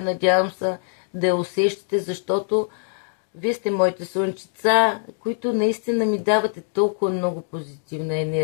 Надявам се да я усещате, защото вие сте моите слънчица, които наистина ми давате толкова много позитивна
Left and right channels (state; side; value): silent; right; digital silence